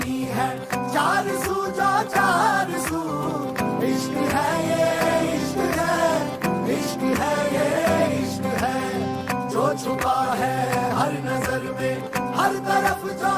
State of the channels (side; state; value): both; identical; correlation 1.00